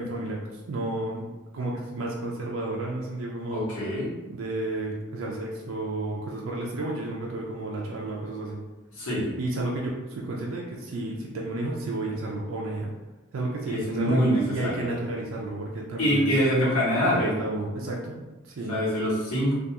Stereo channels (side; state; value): both; normal; correlation 0.47